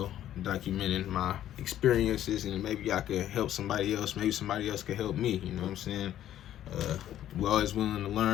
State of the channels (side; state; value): right; quieter; 11.9 dB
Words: documenting my experiences, and maybe I could help somebody else. Maybe somebody else could help me. You know what I'm saying? We're always willing to